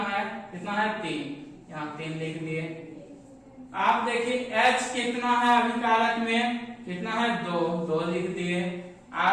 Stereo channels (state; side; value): identical; both; correlation 1.00